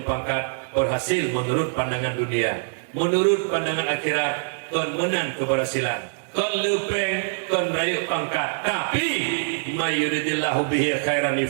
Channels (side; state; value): left; silent; digital silence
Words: pangkat, berhasil menurut pandangan dunia, menurut pandangan akhirat, kon menang keberhasilan, kon lepeng, kon raya pangkat. Tapi mayuridillahu bihi khairan